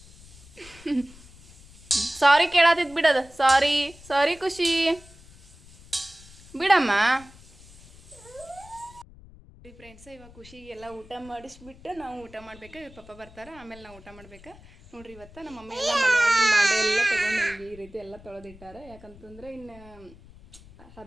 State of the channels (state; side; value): noise; left; rumble, 22 dB below the sound